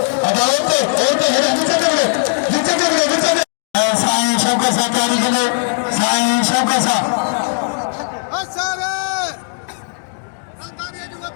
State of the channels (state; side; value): silent; right; digital silence